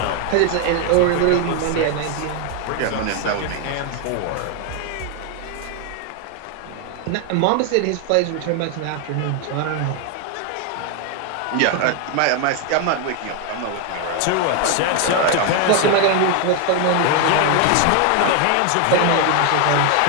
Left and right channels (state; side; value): different; both; correlation 0.01